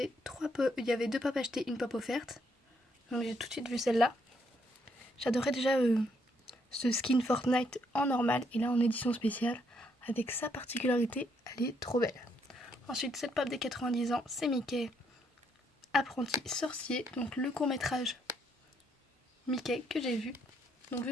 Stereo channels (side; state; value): both; normal; correlation 0.73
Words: avait 2 pop achetées, une pop offerte. Donc j'ai tout de suite vu celle-là. J'adorais déjà ce skin Fortnite en normal et là en édition spéciale. Avec sa particularité, elle est trop belle. Ensuite, cette pop des 90 ans, c'est Mickey, apprenti sorcier, donc le court-métrage Mickey que j'ai vu. Donc